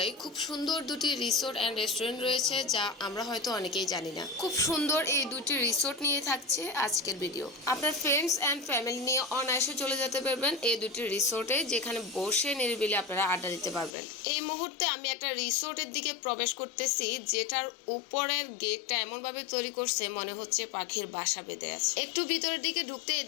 খুব সুন্দর দুটি রিসোর্ট অ্যান্ড রেস্টুরেন্ট রয়েছে, যা আমরা হয়তো অনেকেই জানি না। খুব সুন্দর এই দুটি রিসোর্ট নিয়ে থাকছে আজকের ভিডিও। আপনার ফ্রেন্ডস অ্যান্ড ফ্যামিলি নিয়ে অনায়াসে চলে যেতে পারবেন এই দুটি রিসোর্টে, যেখানে বসে নিরিবিলি আপনারা আড্ডা দিতে পারবেন। এই মুহূর্তে আমি একটা রিসোর্টের দিকে প্রবেশ করতেছি, যেটার উপরের গেটটা এমনভাবে তৈরি করছে মনে হচ্ছে পাখির বাসা বেঁধে আছে। একটু ভিতরের দিকে ঢুকতেই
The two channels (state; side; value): drops out; right; at 14.0 s